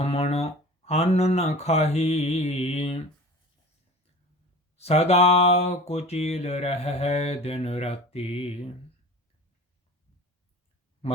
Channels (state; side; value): normal; both; correlation 0.39